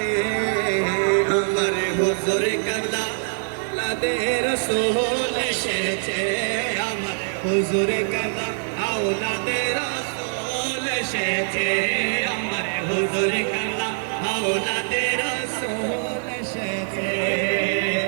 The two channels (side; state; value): left; silent; digital silence